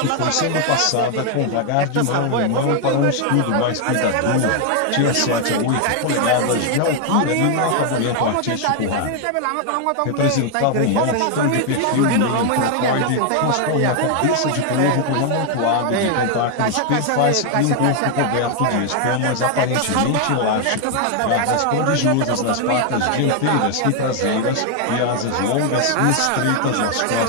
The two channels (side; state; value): both; different; correlation 0.01